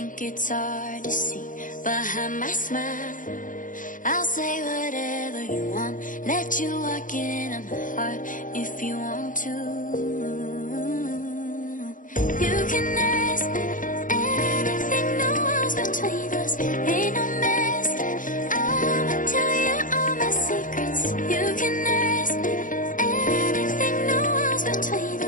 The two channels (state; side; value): late; right; 0.38 ms